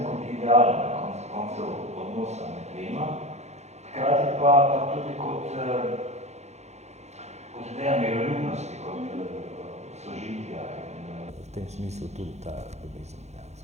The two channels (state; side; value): late; left; 0.32 ms